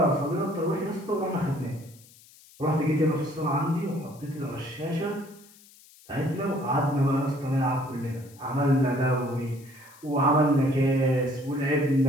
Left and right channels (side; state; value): left; noise; hiss, 25 dB below the sound